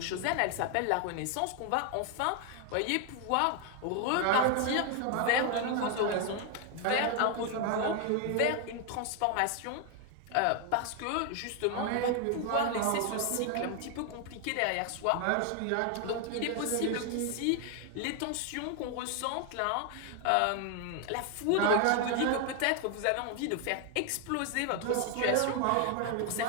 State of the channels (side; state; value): both; different; correlation 0.01